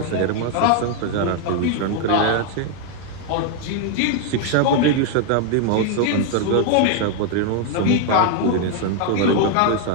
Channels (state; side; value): different; both; correlation 0.00